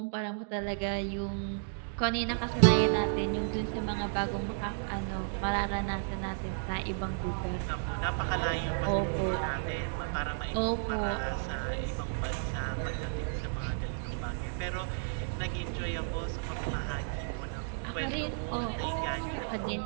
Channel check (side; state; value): left; silent; digital silence